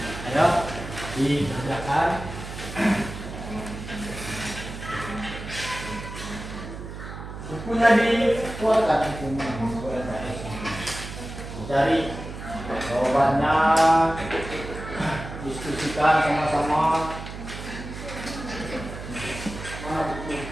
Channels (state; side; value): noise; right; hum, 10 dB below the sound